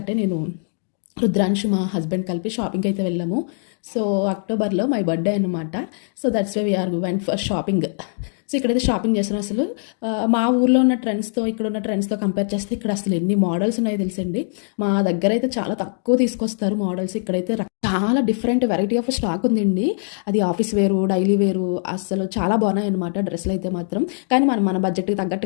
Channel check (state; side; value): silent; right; 62 dB below the other